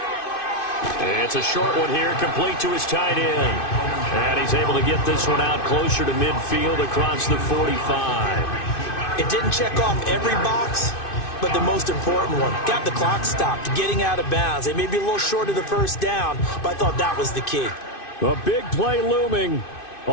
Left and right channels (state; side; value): late; right; 2.5 ms